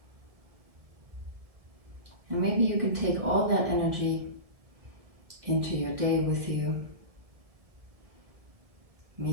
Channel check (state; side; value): late; left; 1.6 ms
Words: And maybe you can take all that energy into your day with you.